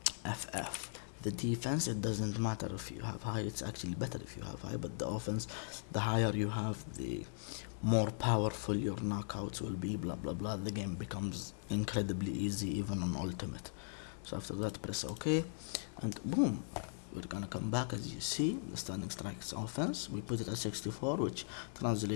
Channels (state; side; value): silent; right; digital silence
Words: FF. The defense, it doesn't matter if you have high, it's actually better if you have high, but the offense, the higher you have, the more powerful your knockouts will be, blah blah blah. The game becomes incredibly easy even on ultimate. So after that, press OK, and boom, we're gonna come back. As you see, the standing strikes offense, we put it at 64, which